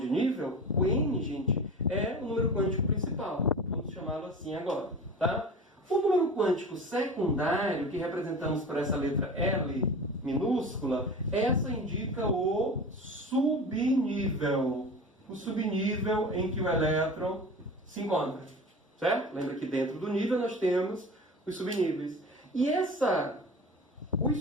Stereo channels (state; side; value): normal; both; correlation 0.34